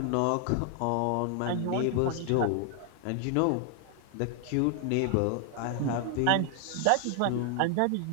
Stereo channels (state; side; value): different; both; correlation 0.00